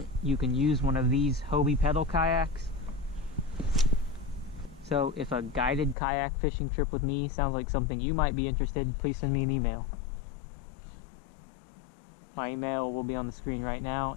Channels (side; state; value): right; drops out; at 6.0 s